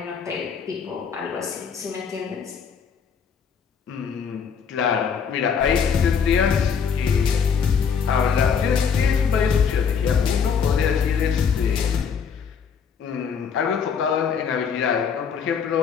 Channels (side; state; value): right; quieter; 6.6 dB